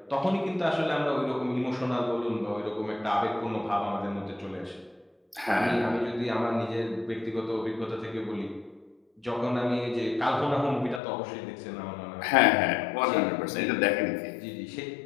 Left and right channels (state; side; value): drops out; right; at 11.0 s